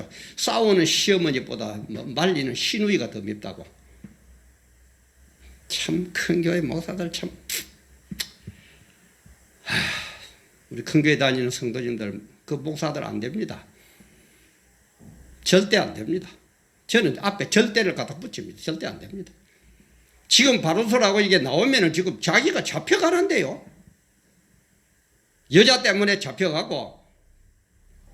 싸우는 시어머니보다 말리는 시누이가 더 밉다고. 참 큰 교회 목사들 참 우리 큰 교회 다니는 성도님들 그 목사들 안 됩니다. 절대 안 됩니다. 저는 앞에 절대를 갖다 붙입니다. 절대 안 됩니다. 지금 바로서라고 이게 나오면은 지금 자기가 잡혀가는데요. 여자 때문에 잡혀가고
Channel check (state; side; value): identical; both; correlation 1.00